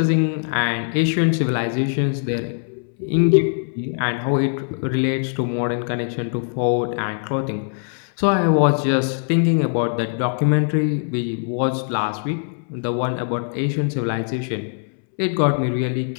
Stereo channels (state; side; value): silent; right; 64 dB below the other